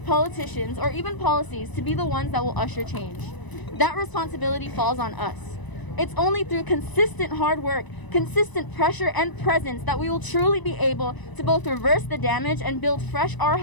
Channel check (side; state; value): right; late; 1.0 ms